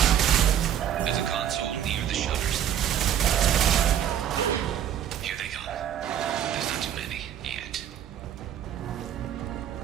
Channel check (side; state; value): left; quieter; 10.0 dB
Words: There's a console near the shutters. Here they come. There's not too many yet.